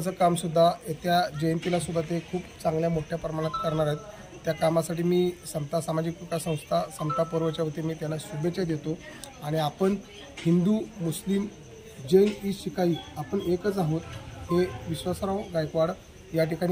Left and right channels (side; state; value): both; identical; correlation 1.00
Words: कामसुद्धा येत्या जयंतीलासुद्धा ते खूप चांगल्या मोठ्या प्रमाणात करणार आहेत. त्या कामासाठी मी समता सामाजिक विकास संस्था समता पर्वच्या वतीने मी त्यांना शुभेच्छा देतो. आणि आपण हिंदू, मुस्लिम, जैन, शिखाई आपण एकच आहोत हे विश्वासराव गायकवाड या